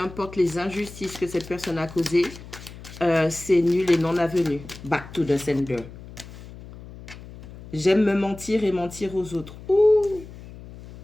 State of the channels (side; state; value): left; noise; hum, 16 dB below the sound